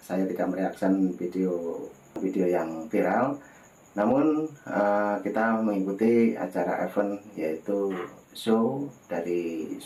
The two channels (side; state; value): both; identical; correlation 1.00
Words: Saya tidak mereaksi video yang viral, namun kita mengikuti acara event yaitu show dari